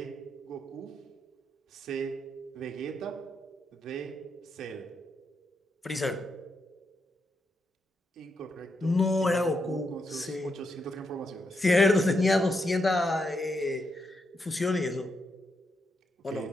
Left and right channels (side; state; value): both; normal; correlation 0.82